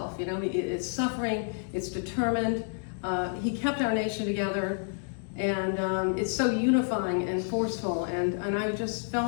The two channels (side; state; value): right; silent; 58 dB below the other